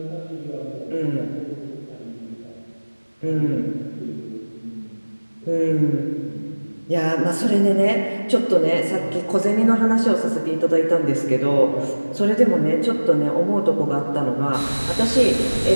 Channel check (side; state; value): both; inverted; correlation -1.00